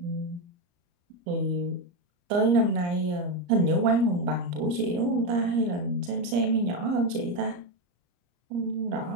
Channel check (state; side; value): late; left; 34 ms